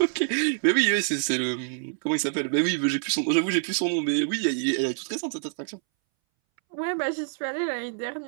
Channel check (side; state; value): left; silent; 61 dB below the other